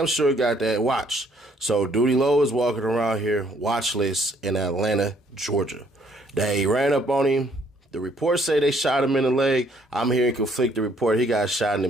sure got that watch. So, Doodlie Low is walking around here watchless in Atlanta, Georgia. They ran up on him. The reports say they shot him in the leg. I'm hearing conflicting report. He got shot in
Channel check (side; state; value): both; normal; correlation 0.65